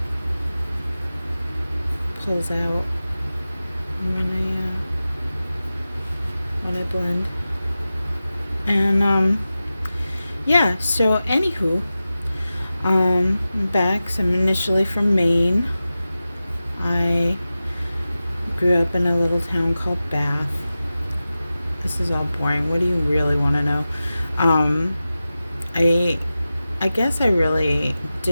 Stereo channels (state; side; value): inverted; both; correlation -0.94